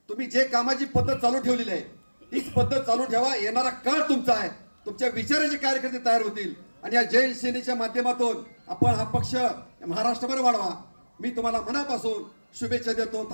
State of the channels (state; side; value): inverted; both; correlation -1.00